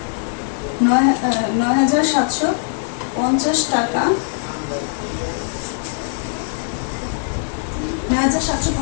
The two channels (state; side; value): silent; right; 56 dB below the other